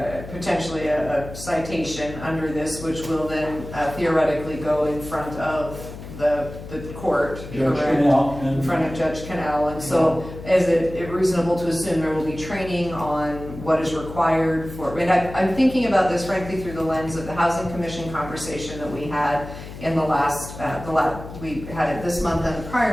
potentially a citation under this, which will then theoretically go in front of the court. Judge correct? Canal In front of Judge Canal, and so is it reasonable to assume there will be training on what is required for, and I'm thinking about this frankly through the lens of the Housing Commission conversation that we had in we had it this month and the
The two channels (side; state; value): left; noise; hum, 12 dB below the sound